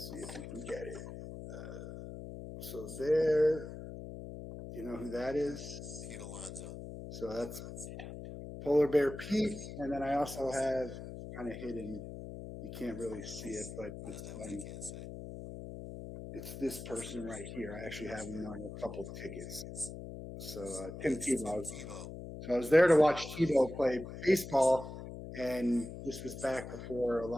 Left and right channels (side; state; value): left; noise; hum, 10 dB below the sound